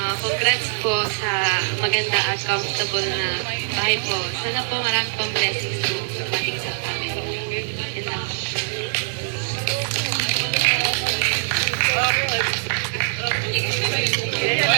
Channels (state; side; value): silent; left; 64 dB below the other